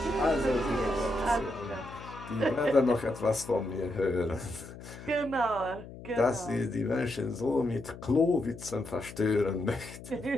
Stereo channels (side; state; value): left; noise; hum, 14 dB below the sound